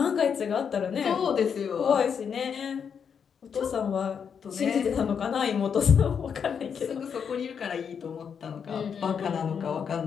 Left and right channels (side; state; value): right; quieter; 7.0 dB